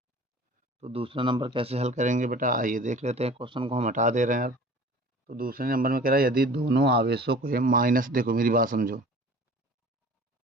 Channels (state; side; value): normal; both; correlation 0.44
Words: तो दूसरा नंबर कैसे हल करेंगे बेटा, आइए देख लेते हैं। क्वेश्चन को हम हटा दे रहे हैं अब। तो दूसरे नंबर में कह रहा है यदि दोनों आवेशों को माइनस, देखो मेरी बात समझो,